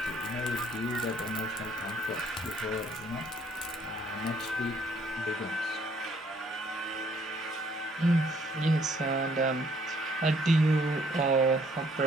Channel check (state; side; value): normal; both; correlation 0.64